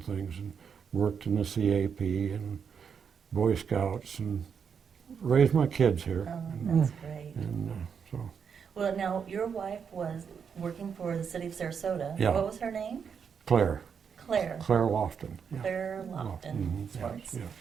things, and worked in the CAP and Boy Scouts, and raised my kids here. Oh, that's great. And so. Well, now, your wife was working for the city of Sarasota. Yeah. What was her name? Claire Claire. Lofton. Yeah. Claire Lofton. Mhm, Swartz.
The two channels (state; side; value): quieter; left; 6.8 dB